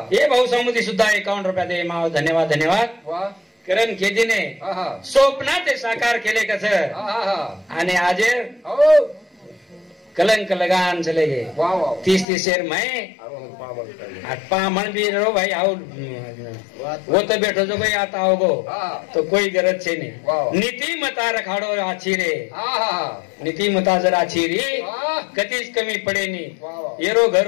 हे भाऊ समुदी सुद्धा 51 रुपया दे माव धन्यवाद धन्यवाद करण केदीने स्वप्न ते साकार केले कसं आणि आज कलंक लगान चले गए 30 शेर मैं मन भी रो भाई आओ वो तो बैठो जो भाई आता होगो तो कोई गरज छे नहीं नीति मता रखाड़ो आछी रे नीति मता जरा आछी री कतीच कमी पडे नहीं येरो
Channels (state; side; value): drops out; right; at 12.2 s